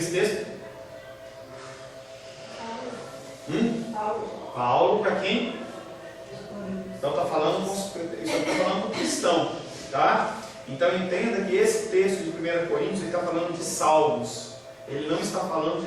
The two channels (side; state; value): both; identical; correlation 1.00